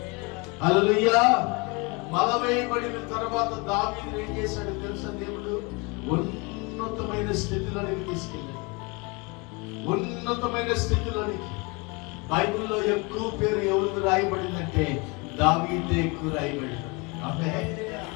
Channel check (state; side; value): quieter; right; 28.8 dB